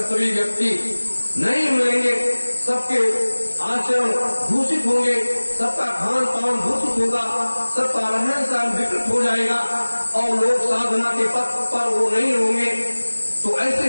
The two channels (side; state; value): both; inverted; correlation -1.00